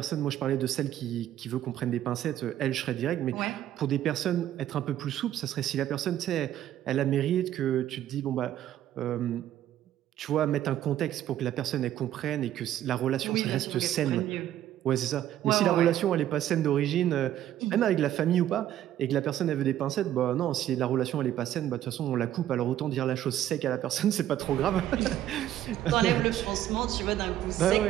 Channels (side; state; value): left; quieter; 12.1 dB